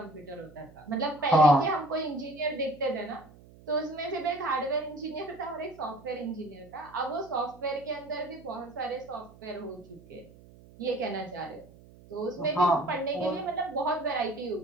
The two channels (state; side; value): noise; right; hum, 22 dB below the sound